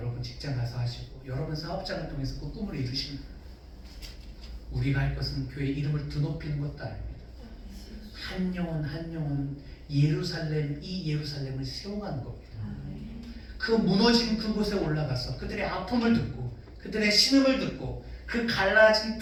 직장 가서 하시고 여러분 사업장을 통해서 그 꿈을 이루시는 거예요. 우리가 할 것은 교회 이름을 드높이는 것도 아닙니다. 한 영혼 한 영혼 예루살렘 이 예루살렘을 세워가는 겁니다. 그 무너진 그곳에 올라가서 그들의 아픔을 듣고 그들의 신음을 듣고 그 갈라진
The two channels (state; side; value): identical; both; correlation 1.00